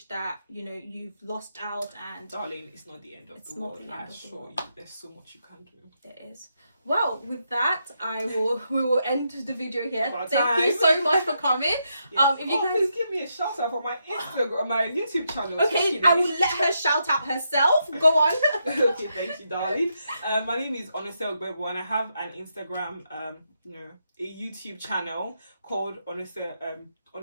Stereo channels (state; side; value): inverted; both; correlation -0.81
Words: that you've lost out. And darling, it's not the end of the world. I assure you, there's so much you can do. There is. Well, with that, we will end the video here. Thank you so much for coming. Yes. If you guys please give me a shout out for my Instagram, my YouTube channel. Okay, I will let her shout out herself. Go on. Okay, thank you, darling. My name is Onose Ogbebo, and I have an Instagram, a YouTube channel called Onose